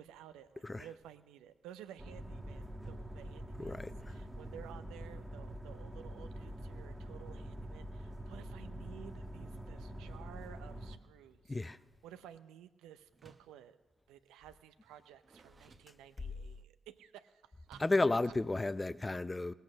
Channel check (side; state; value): both; normal; correlation 0.95